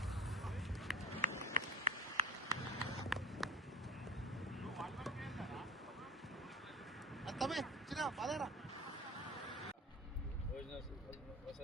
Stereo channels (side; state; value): both; normal; correlation 0.34